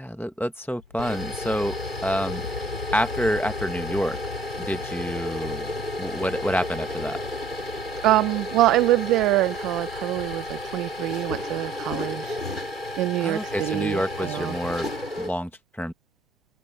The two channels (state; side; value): quieter; left; 4.0 dB